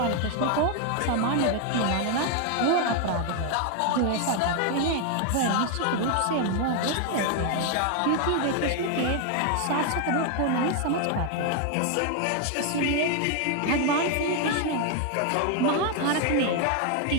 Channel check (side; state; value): both; different; correlation 0.01